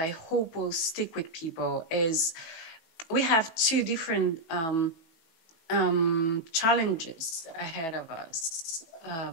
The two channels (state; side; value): late; right; 18 ms